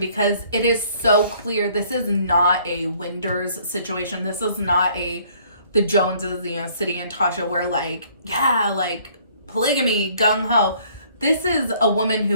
it is so clear this is not a Winders situation. This is not the Joneses, City and Tasha, where like polygamy, gung-ho. This is a woman who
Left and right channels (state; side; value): inverted; both; correlation -0.60